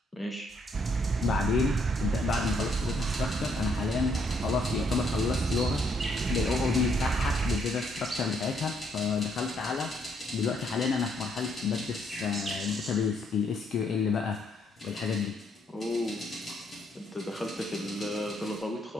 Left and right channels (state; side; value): normal; both; correlation 0.71